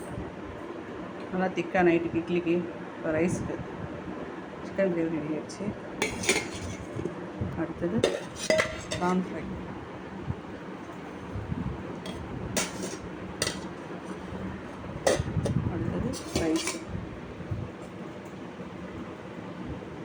நல்லா திக்காக நைட்டுக்கு இட்லிக்கு இப்போ ரைஸுக்கு சிக்கன் கிரேவி ரெடி ஆகிடுச்சு. அடுத்தது ப்ரான் ஃப்ரை. அடுத்தது ரைஸ்.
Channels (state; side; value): identical; both; correlation 1.00